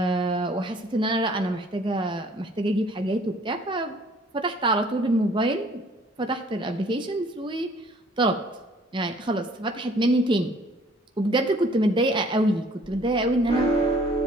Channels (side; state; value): both; normal; correlation 0.56